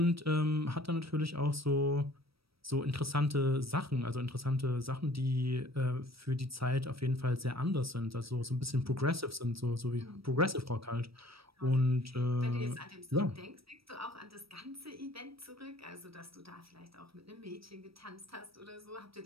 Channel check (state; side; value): late; left; 0.76 ms